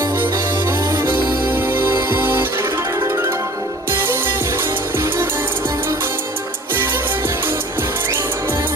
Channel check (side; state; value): both; normal; correlation 0.48